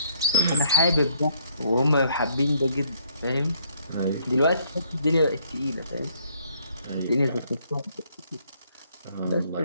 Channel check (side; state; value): both; inverted; correlation -0.66